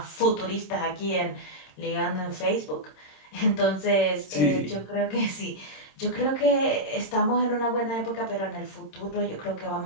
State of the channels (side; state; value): right; late; 26 ms